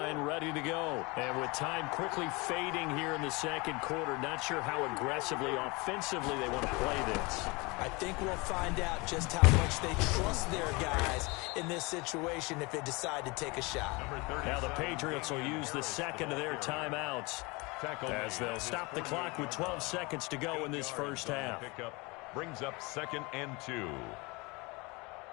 ready to go. And with time quickly fading here in the 2nd quarter, not sure how aggressively, offensively they want to play this. I think we'll find out just how much they trust their guys in this situation if they decide to take a shot. Now the Patriots will use the 2nd of their timeouts as they'll stop the clock with 12 seconds to go in this first half. Brings up 2nd and 2.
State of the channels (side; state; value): right; quieter; 26.2 dB